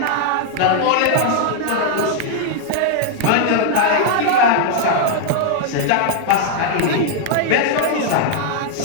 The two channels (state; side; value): different; both; correlation 0.00